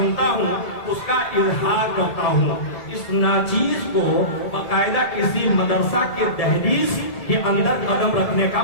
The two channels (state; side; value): late; right; 1.7 ms